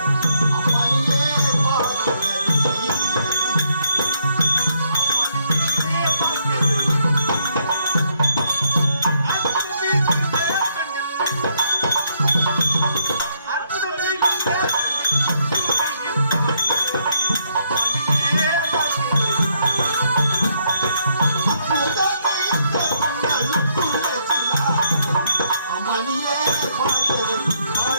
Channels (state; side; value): inverted; both; correlation -0.73